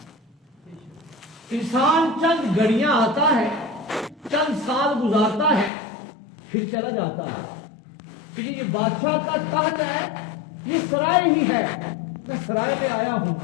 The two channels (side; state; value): right; drops out; at 5.7 s